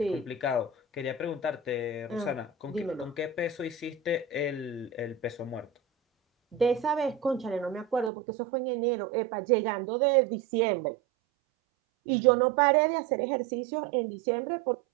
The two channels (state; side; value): drops out; left; at 8.1 s